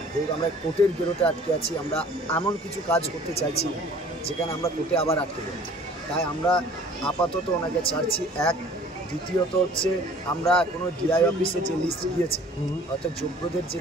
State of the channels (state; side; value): normal; both; correlation 0.51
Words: যেহেতু আমরা কোর্টের গেরোতে আটকে আছি। আমরা এমন কিছু কাজ করতে চাইছি না যেখানে আমরা কোর্টে আবার আটকে যাই, তাই আমরা আপাতত ওনাকে ছাড়ছি। এক, দ্বিতীয়ত হচ্ছে আমরা এখনও ডিআই অফিসে যে লিস্ট গিয়েছে, অর্থাৎ যোগ্যদের যে